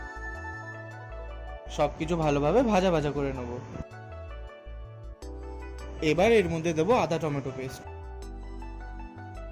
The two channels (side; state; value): both; identical; correlation 1.00